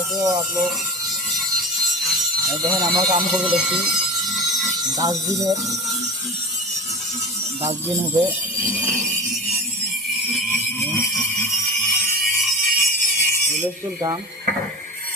हो आप लोग। দেখেন আমরা কাম করবো দেখছি ডাস্টবিন হবে হুলস্থুল কাম।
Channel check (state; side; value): normal; both; correlation 0.29